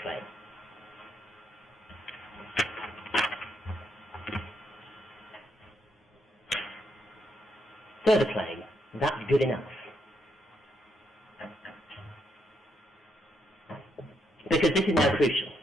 Claim. Further claim, that's good enough. Because this is now crucial.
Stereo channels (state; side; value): normal; both; correlation 0.77